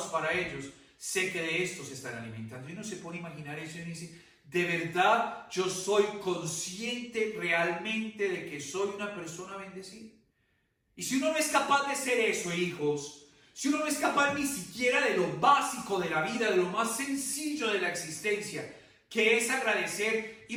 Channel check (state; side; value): identical; both; correlation 1.00